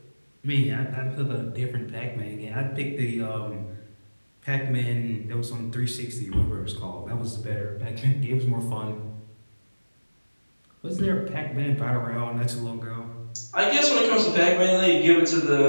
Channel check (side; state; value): both; inverted; correlation -1.00